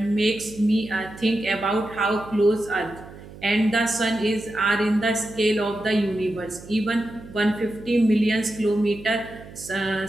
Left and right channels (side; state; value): right; noise; hum, 17 dB below the sound